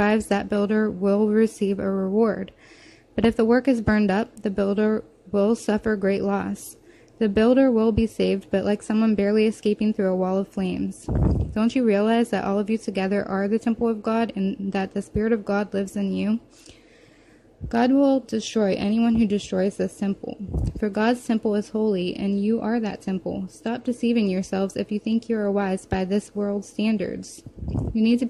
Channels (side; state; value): both; identical; correlation 1.00